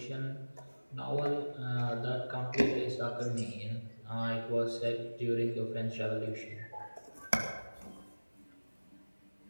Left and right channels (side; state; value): both; inverted; correlation -1.00